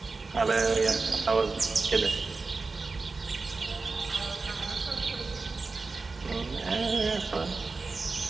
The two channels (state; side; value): quieter; left; 4.0 dB